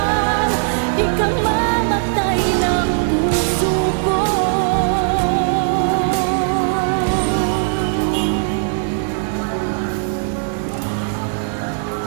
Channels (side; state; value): left; silent; digital silence